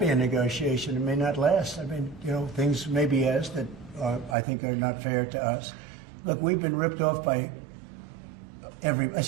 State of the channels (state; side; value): drops out; left; at 4.4 s